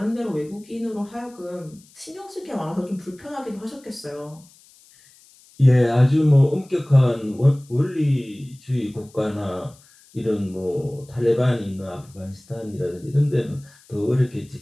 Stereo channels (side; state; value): left; noise; hiss, 27 dB below the sound